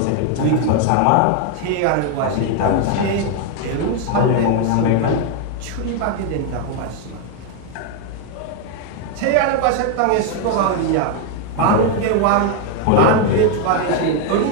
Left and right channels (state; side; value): different; both; correlation 0.01